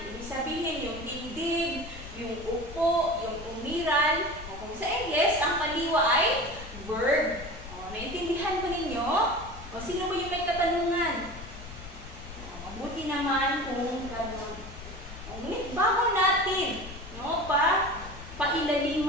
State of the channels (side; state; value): left; noise; rumble, 13 dB below the sound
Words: Ibig sabihin, yung dibdib, yung upo, yung umiral. Kung sa English, ang pandiwa ay verb. Naintindihan ko ninyo? Sino ba yung may katanungan? Mabuti naman kung gano'n. Ngunit bago natin